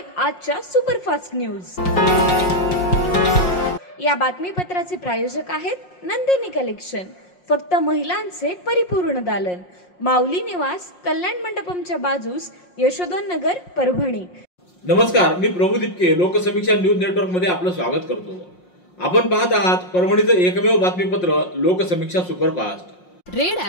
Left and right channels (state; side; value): late; right; 5.6 ms